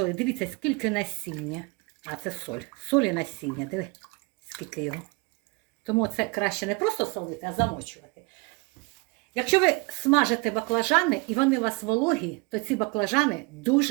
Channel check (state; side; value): quieter; left; 28.3 dB